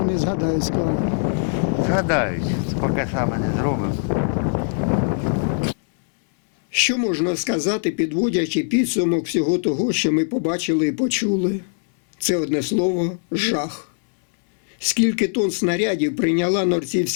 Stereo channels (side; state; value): right; silent; 65 dB below the other